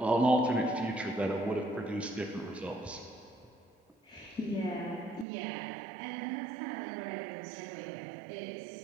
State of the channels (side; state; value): left; drops out; at 5.2 s